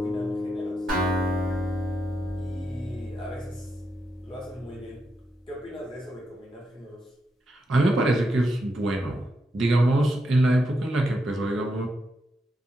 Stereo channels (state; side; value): normal; both; correlation 0.84